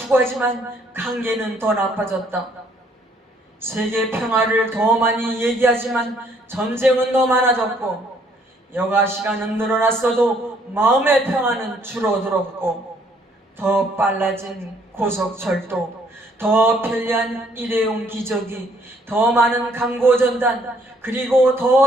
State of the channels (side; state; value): both; normal; correlation 0.65